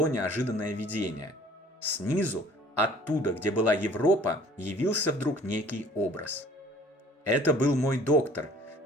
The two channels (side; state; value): both; normal; correlation 0.52